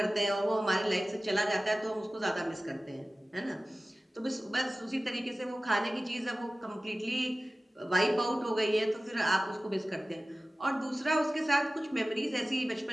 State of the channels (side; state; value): both; normal; correlation 0.97